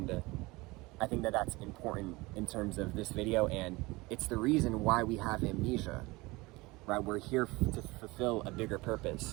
I think that that's important in terms of this video, and it's the reason why we have Amnesia, right? We're here to fulfill a bigger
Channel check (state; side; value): quieter; left; 22.7 dB